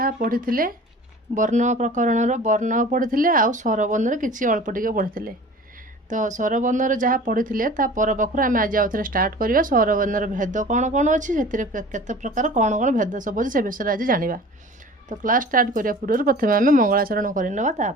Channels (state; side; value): normal; both; correlation 0.42